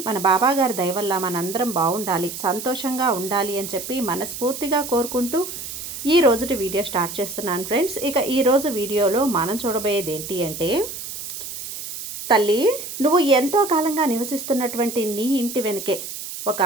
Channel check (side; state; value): right; noise; hiss, 9 dB below the sound